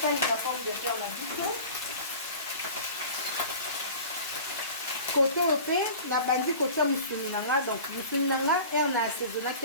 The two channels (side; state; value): both; inverted; correlation -0.40